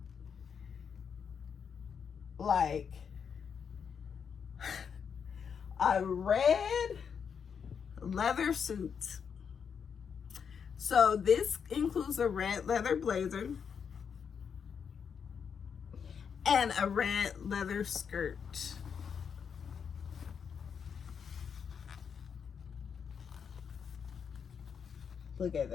like a red leather suit. So this includes a red leather blazer and a red leather skirt. Look at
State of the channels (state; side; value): quieter; right; 6.8 dB